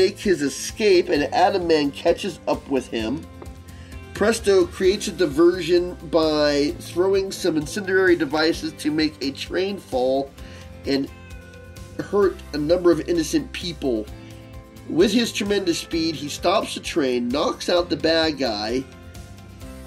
his escape, and Atoman catches up with him. Presto creates a diversion by throwing some incendiary devices to make a train fall and hurt a number of innocent people. With his tremendous speed, he stops the train, knocks out the bad guy,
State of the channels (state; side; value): identical; both; correlation 1.00